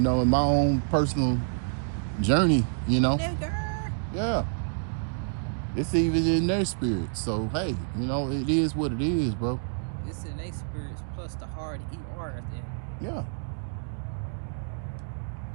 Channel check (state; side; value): silent; left; digital silence